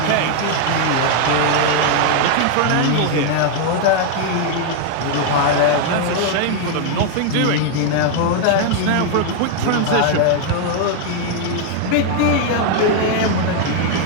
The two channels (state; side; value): different; both; correlation 0.00